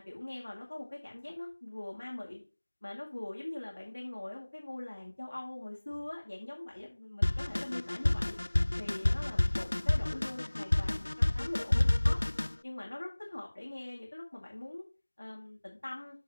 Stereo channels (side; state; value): both; inverted; correlation -1.00